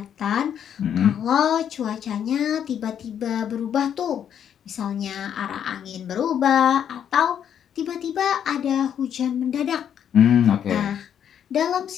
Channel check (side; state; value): right; quieter; 9.0 dB